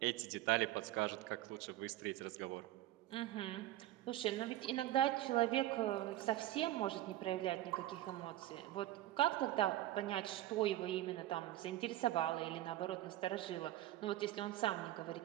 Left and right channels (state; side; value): quieter; left; 14.7 dB